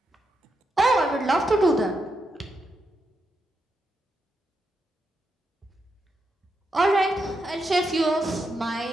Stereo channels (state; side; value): normal; both; correlation 0.84